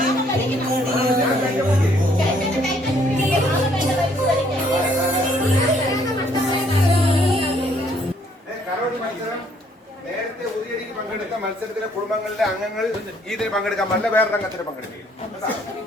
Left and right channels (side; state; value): both; normal; correlation 0.65